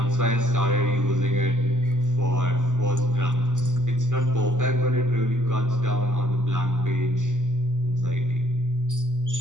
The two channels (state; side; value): late; left; 0.87 ms